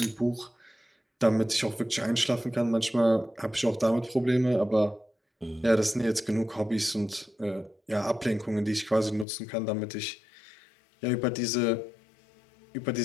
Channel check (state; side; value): drops out; right; at 9.2 s